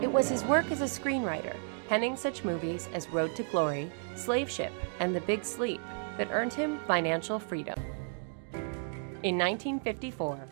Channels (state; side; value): silent; left; 56 dB below the other